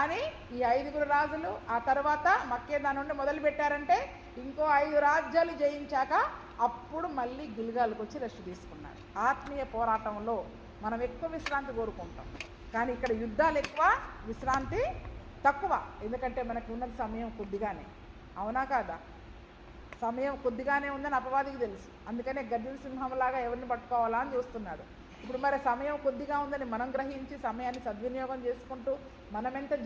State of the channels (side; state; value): both; identical; correlation 1.00